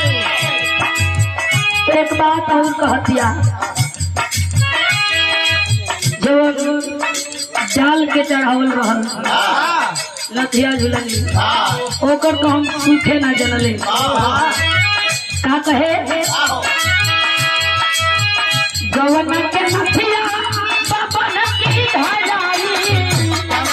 एक बात और कह दिया जो जाल के चढ़ावल रहल लथिया झुलनी ओकर तो हम सूखे ना जनले का कहे गवन के नथिया बबन की धराई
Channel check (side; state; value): both; identical; correlation 1.00